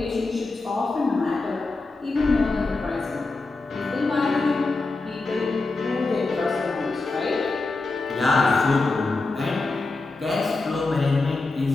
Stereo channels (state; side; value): quieter; right; 3.5 dB